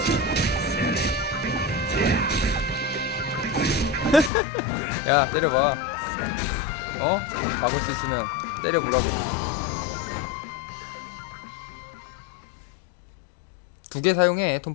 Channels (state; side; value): drops out; right; at 4.3 s